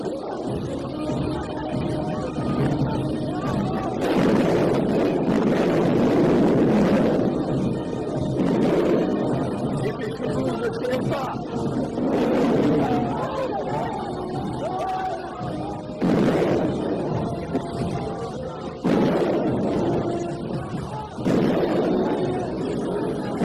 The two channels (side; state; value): both; identical; correlation 1.00